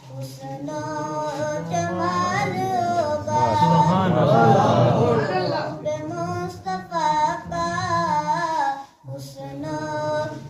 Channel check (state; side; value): identical; both; correlation 1.00